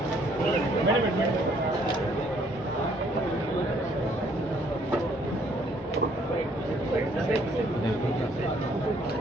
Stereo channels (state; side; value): normal; both; correlation 0.64